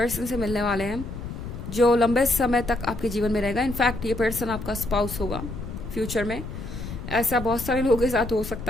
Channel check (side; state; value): left; noise; rumble, 9 dB below the sound